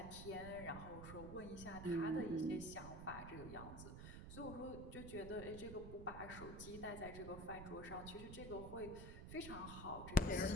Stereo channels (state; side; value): noise; right; rumble, 9 dB below the sound